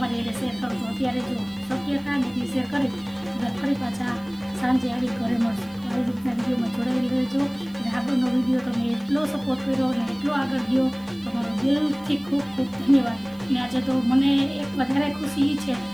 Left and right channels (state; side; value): noise; right; hiss, 27 dB below the sound